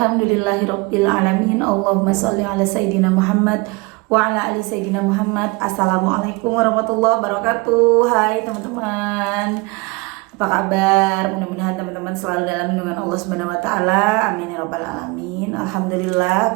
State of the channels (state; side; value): quieter; left; 26.2 dB